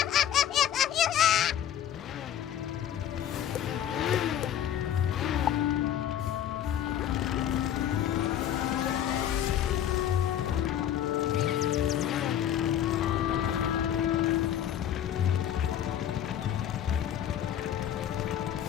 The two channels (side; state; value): right; quieter; 10.5 dB